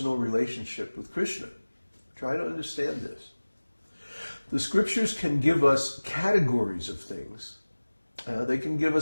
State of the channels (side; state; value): both; inverted; correlation -1.00